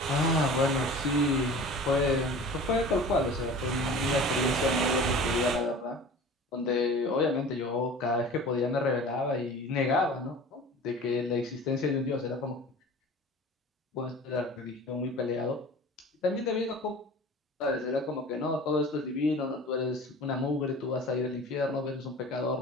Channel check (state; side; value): normal; both; correlation 0.40